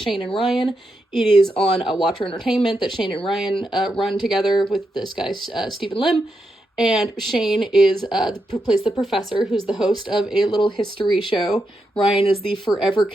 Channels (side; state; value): both; normal; correlation 0.85